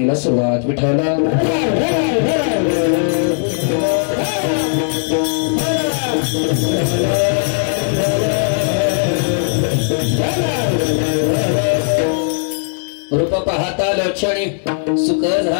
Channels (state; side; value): silent; right; digital silence